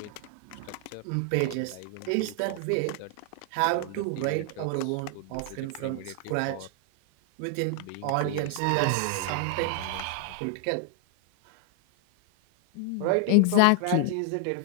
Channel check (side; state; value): both; different; correlation 0.00